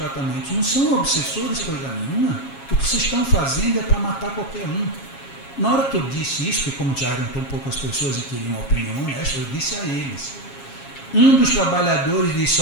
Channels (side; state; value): right; late; 7.3 ms